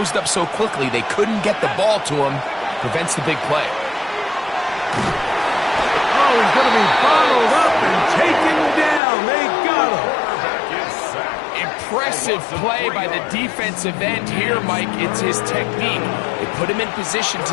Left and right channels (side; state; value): right; drops out; at 9.0 s